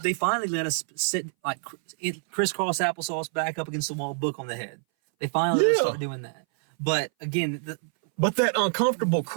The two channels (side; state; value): left; silent; 59 dB below the other